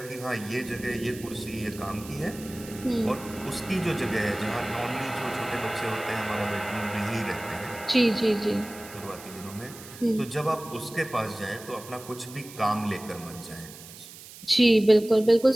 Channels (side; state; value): right; noise; hiss, 16 dB below the sound